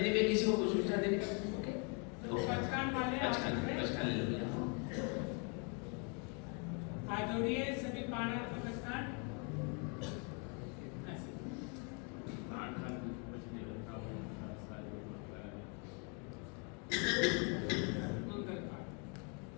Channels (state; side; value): quieter; right; 36.1 dB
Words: में, किसी को कोई सूचना देने में, ओके पचकान वाले पचकान ले लो भैया। हाथ जोड़िए सभी पाना को पचकान। मंगल